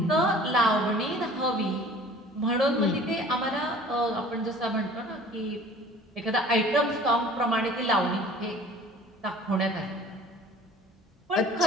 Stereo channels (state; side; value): normal; both; correlation 0.48